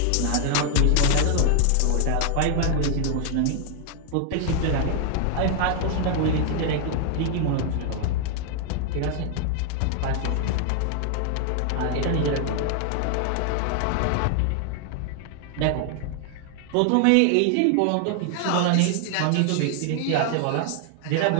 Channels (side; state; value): both; different; correlation 0.00